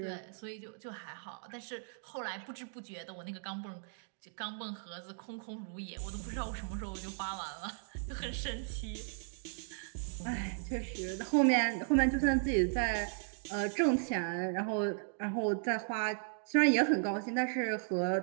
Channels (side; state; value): left; silent; digital silence